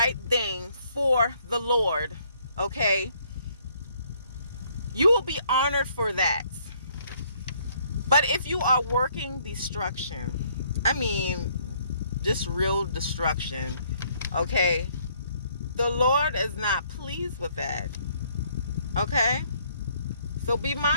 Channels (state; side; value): inverted; both; correlation -0.66